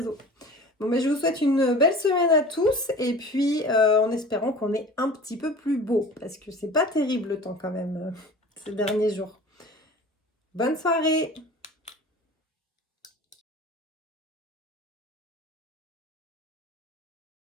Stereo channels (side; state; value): both; normal; correlation 0.40